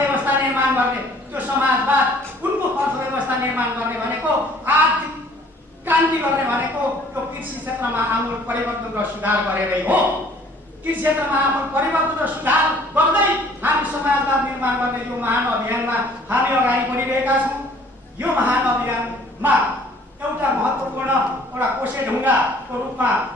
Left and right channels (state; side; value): normal; both; correlation 0.56